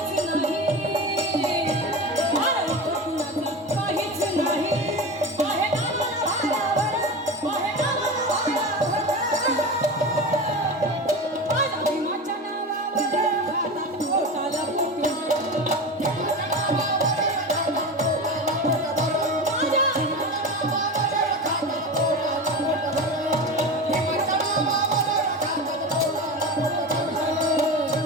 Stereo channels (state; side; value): normal; both; correlation 0.26